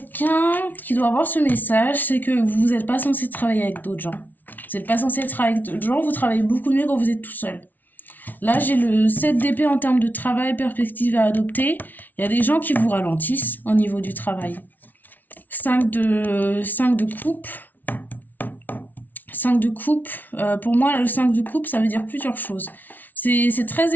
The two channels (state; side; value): late; right; 0.083 ms